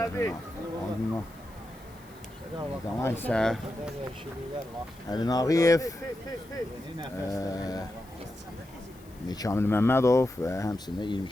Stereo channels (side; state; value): left; noise; hiss, 26 dB below the sound